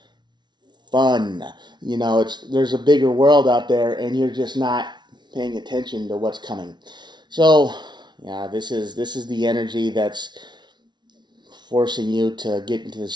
fun. There's a bigger world out there, and you're just not paying attention to what's coming. So, yeah, this is the energy that's forcing you to get into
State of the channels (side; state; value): left; late; 0.21 ms